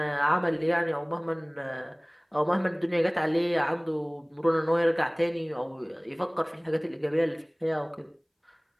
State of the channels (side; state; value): both; identical; correlation 1.00